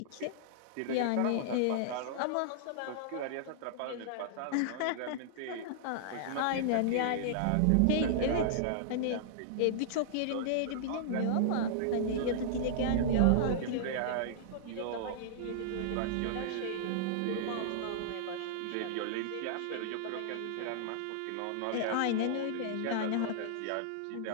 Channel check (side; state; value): both; different; correlation -0.01